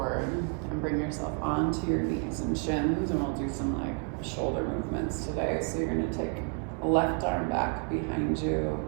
and bring yourself onto your knees and shins. And we'll do some like shoulder movements today. So you're gonna take a left arm back behind you.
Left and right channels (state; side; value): quieter; left; 39.7 dB